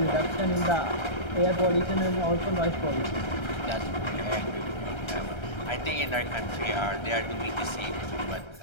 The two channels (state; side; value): late; right; 1.3 ms